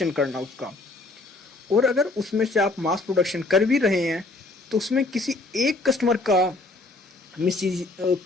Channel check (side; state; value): right; quieter; 3.2 dB